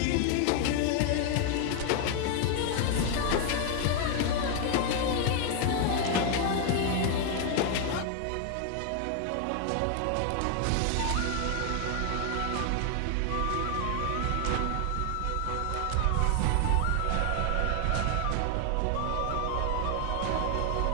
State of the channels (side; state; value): both; different; correlation 0.00